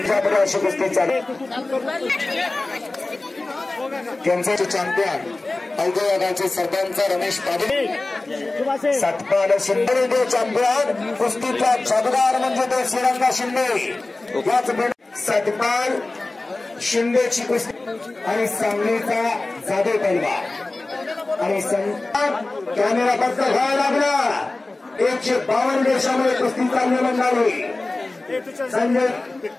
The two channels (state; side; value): quieter; right; 3.1 dB